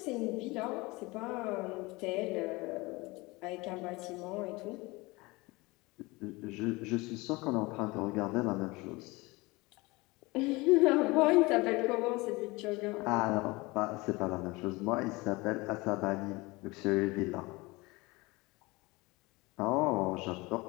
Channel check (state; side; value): quieter; right; 23.3 dB